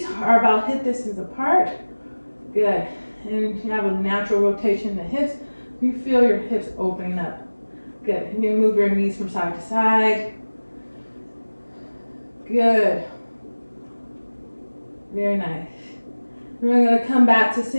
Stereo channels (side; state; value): both; inverted; correlation -1.00